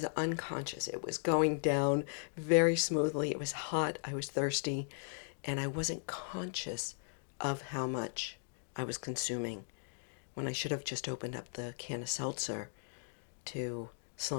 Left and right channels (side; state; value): right; silent; digital silence